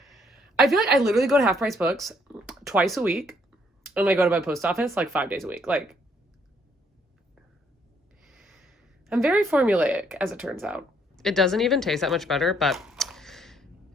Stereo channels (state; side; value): normal; both; correlation 0.68